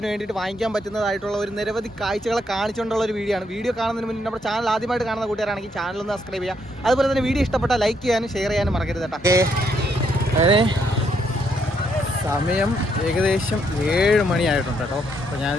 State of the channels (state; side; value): normal; both; correlation 0.74